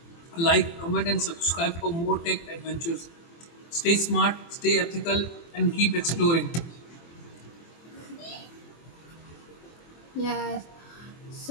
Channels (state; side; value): late; right; 24 ms